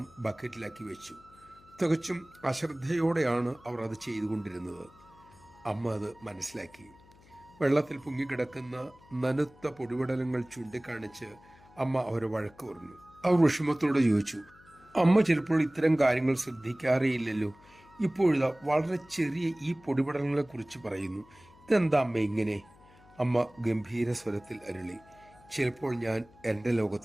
ബക്കറ്റിലാക്കി വെച്ചു. തികച്ചും അശ്രദ്ധയോടെയാണ് അവർ അത് ചെയ്തുകൊണ്ടിരുന്നത്. അമ്മ അത് മനസ്സിലാക്കി. വെള്ളത്തിൽ പൊങ്ങിക്കിടക്കുന്ന നനുത്ത പൊടിപടലങ്ങൾ ചൂണ്ടിക്കാണിച്ച് അമ്മ അവരെ വഴക്ക് പറഞ്ഞു. അവർ വിഷമത്തോടെ ചോദിച്ചു, അമ്മ ചിലപ്പോൾ ഇത്തരം കാര്യങ്ങൾ ശ്രദ്ധിക്കാറേയില്ലല്ലോ. ഇപ്പോഴിതാ വളരെ ചെറിയ ഈ പൊടിപടലങ്ങളെ കുറിച്ച് പറയുന്നു. ഇതെന്താ അമ്മ ഇങ്ങനെ? അമ്മ ഗംഭീര സ്വരത്തിൽ അരുളി, ചിലപ്പോൾ ഞാൻ എൻ്റെ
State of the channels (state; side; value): noise; left; hum, 26 dB below the sound